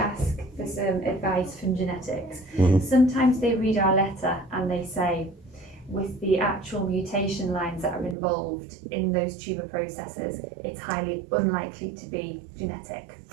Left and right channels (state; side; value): drops out; left; at 8.2 s